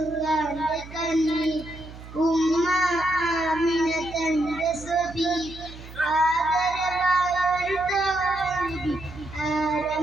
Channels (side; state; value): right; noise; hum, 15 dB below the sound